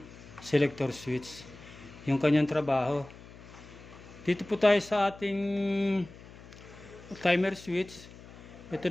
selector switch, yung kanyang trabaho. Dito po tayo sa ating timer switch. Ito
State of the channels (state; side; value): noise; left; hum, 18 dB below the sound